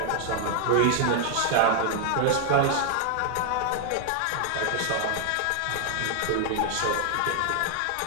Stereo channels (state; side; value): different; both; correlation 0.00